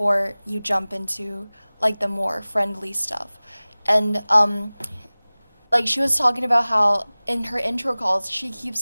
you jump into like the more friendly stuff. And like, she was talking about how in her intro calls she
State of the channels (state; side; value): inverted; both; correlation -0.99